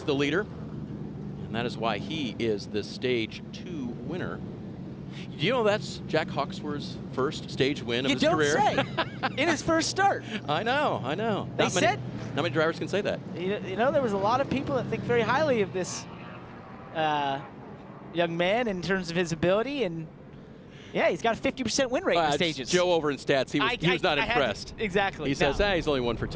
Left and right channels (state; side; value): identical; both; correlation 1.00